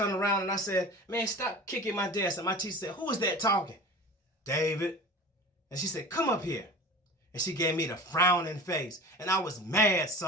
around and I said, "Man, stop kicking my desk." And my teacher said, "Who is that talking?" "David." And she said, "Come up here." And she gave me the frowning face. And I was mad,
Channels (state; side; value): normal; both; correlation 0.36